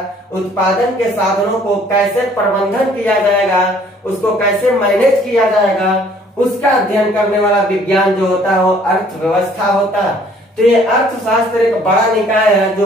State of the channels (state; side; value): normal; both; correlation 0.58